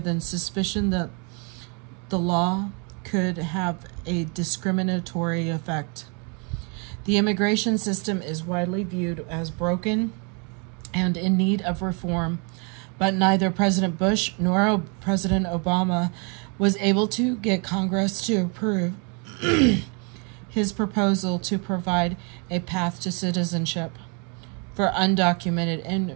suspicion that the law could have a discriminatory effect. The immigration system is widely viewed as broken and in need of reform, but neither President Bush nor President Obama was able to get Congress to approve his proposal to provide a path to citizenship for undocumented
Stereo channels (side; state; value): left; quieter; 35.1 dB